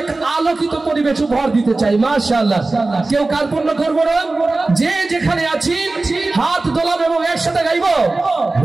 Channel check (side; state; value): left; quieter; 3.2 dB